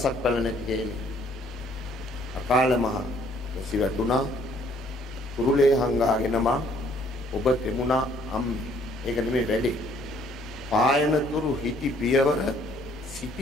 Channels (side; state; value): both; normal; correlation 0.62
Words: පළ නැති හේනේ. අකාල මහ සිවතුණා කුරුලේ හංගාගෙන මා ඔබ තෙමුණා අම්මේ. ඒක නෙමෙයි වැඩේ. පායනතුරු හිටි පියවර